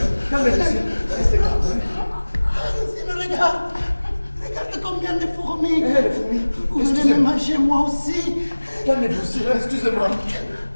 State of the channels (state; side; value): inverted; both; correlation -1.00